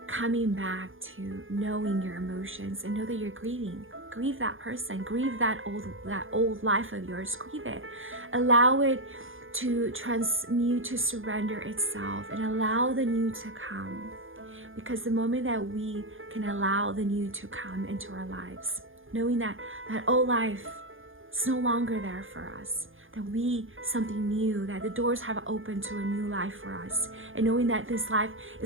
coming back to knowing your emotions and know that you're grieving. Grieve that person. Grieve that old life of yours. Grieve it. Allow it to transmute, to surrender itself, and allow the new to come. Because the moment that we can allow the new to come into our lives, knowing that old life is no longer there for us, that we something new, that the doors have opened to a new life for us, and knowing that this life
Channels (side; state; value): left; late; 0.58 ms